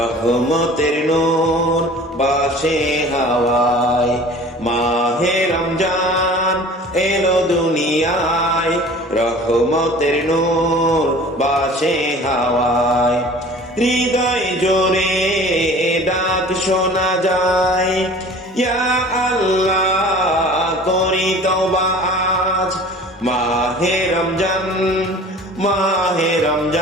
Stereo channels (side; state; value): both; normal; correlation 0.45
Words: নূর বাসে হাওয়ায়। মাহে রমজান এলো দুনিয়ায়, রহমতের নূর বাসে হাওয়ায়। হৃদয় জোরে ডাক শোনা যায়, ইয়া আল্লাহ করি তওবা আজ। মাহে রমজান, মাহে